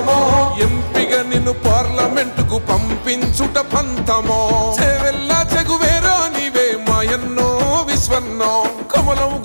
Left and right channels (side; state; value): both; inverted; correlation -1.00